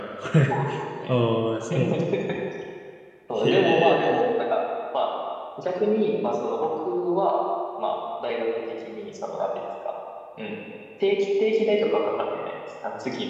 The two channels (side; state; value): both; identical; correlation 1.00